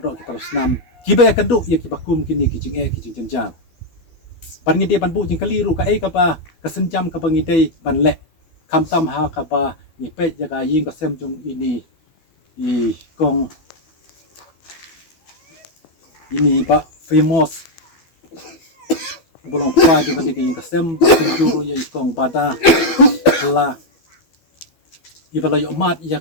ki parasnam kiba ya kendu ya kibakum kini kijing kijing jenjar ban ngidai ban bu jing kaliru ka ba kasenjam ka bangidai ban le kamtam ha ka ba ni pet jaga ying kasem jong ini i kong ini pak famous belum pa juga di kasem penjuru ya kong bada la ibala yo mat ya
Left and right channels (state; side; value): late; right; 12 ms